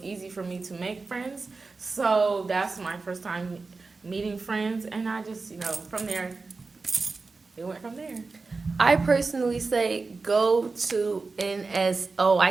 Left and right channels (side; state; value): left; quieter; 4.0 dB